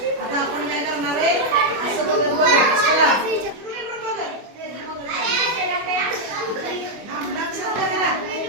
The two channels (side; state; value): left; late; 25 ms